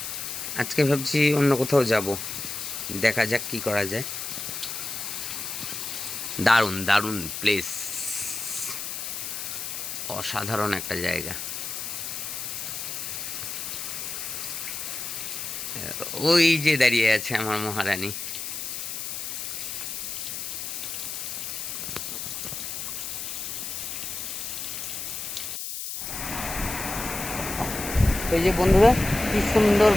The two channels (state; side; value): noise; left; hiss, 5 dB below the sound